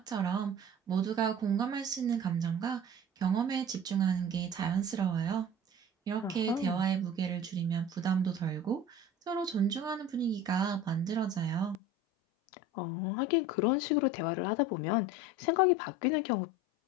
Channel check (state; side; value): drops out; right; at 11.8 s